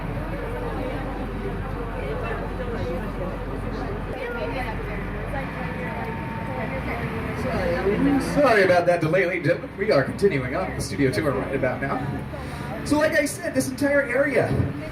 Sorry about that delay, ladies and gentlemen. We are continuing on with the studio tour right about now. So like I said, this entire area...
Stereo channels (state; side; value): identical; both; correlation 1.00